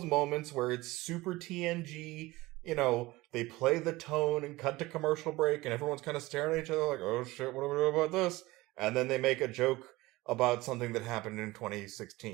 moments where it's super TNG, they play the tone and cut to commercial break, and everyone's kind of staring at each other like, oh shit, what do we do about this? And then they make a joke about something that happened in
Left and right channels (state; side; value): quieter; left; 20.0 dB